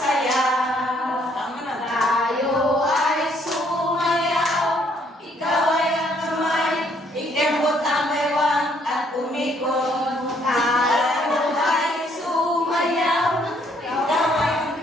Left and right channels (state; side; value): normal; both; correlation 0.67